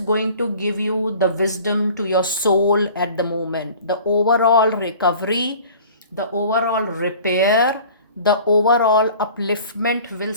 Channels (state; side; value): inverted; both; correlation -0.46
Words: to give you the wisdom to your soul at the moment, the overall recovery, the overall repair, the overall upliftment will